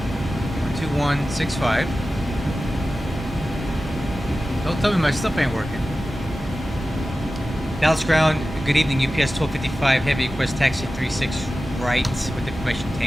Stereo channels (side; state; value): both; normal; correlation 0.94